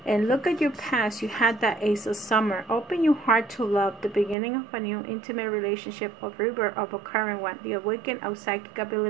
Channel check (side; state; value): left; drops out; at 4.4 s